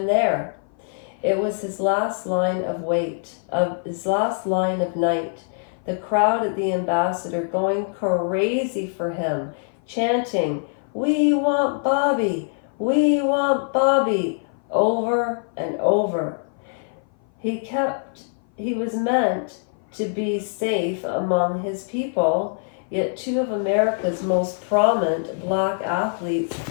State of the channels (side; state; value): right; silent; 57 dB below the other